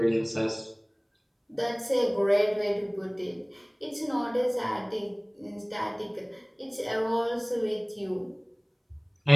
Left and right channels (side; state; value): both; identical; correlation 1.00